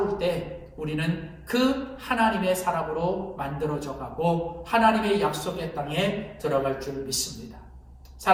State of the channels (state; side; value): identical; both; correlation 1.00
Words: 때 우리는 그 하나님의 사람으로 만들어져 가고 하나님의 약속의 땅에 들어갈 줄 믿습니다.